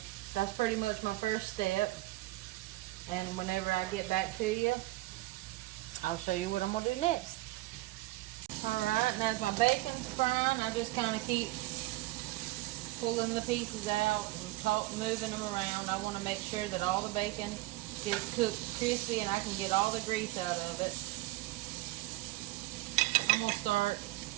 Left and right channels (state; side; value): quieter; left; 19.1 dB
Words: that's pretty much my first step, and whenever I get back to you, I'll show you what I'm going to do next. Alright, and as my bacon's frying, I just kind of keep pulling the pieces out and moving them around. I want to make sure that all the bacon gets cooked crispy and I can get all the grease out of it. I'm going to start